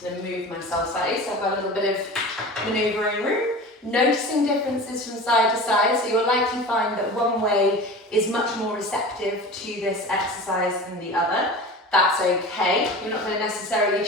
going to move myself slightly, so I've got a little bit of manoeuvring room. Noticing differences from side to side, so you'll likely find that one way is much more receptive to this exercise than the other. That's okay. You're not going to necessarily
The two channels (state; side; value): normal; both; correlation 0.34